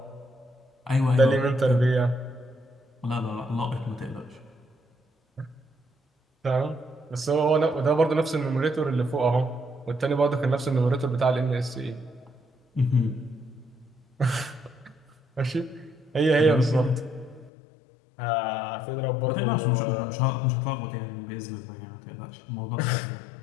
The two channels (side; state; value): right; drops out; at 17.5 s